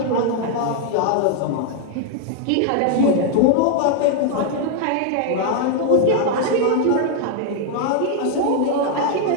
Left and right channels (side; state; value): both; different; correlation 0.00